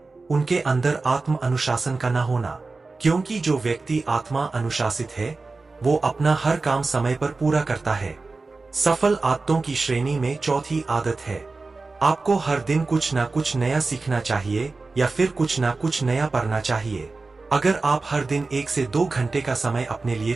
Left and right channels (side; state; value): left; quieter; 3.7 dB